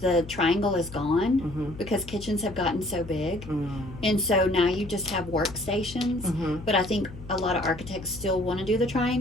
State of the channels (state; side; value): noise; left; hum, 14 dB below the sound